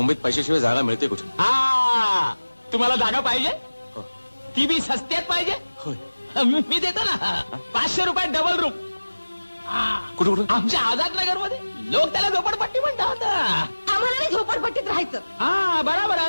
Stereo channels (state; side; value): inverted; both; correlation -1.00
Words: पैशाशिवाय जागा मिळते कुठे? तुम्हाला जागा पाहिजे? ती बी सस्त्यात पाहिजे? मी देतो ना. 500 रुपये डबल रूम. कुठं कुठं आमच्या आझादनगर मध्ये लोक त्याला झोपडपट्टी म्हणतात. आम्हाला नाही झोपडपट्टीत राहायचं. हा बरोबर आहे.